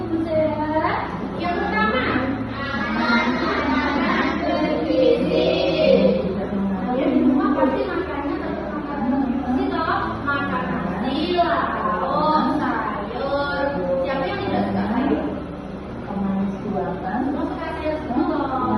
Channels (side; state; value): both; identical; correlation 1.00